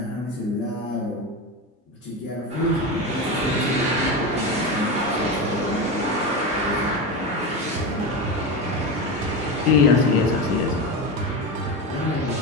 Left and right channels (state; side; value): normal; both; correlation 0.20